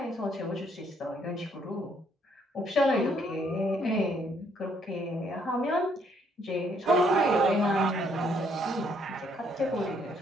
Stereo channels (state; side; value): normal; both; correlation 0.68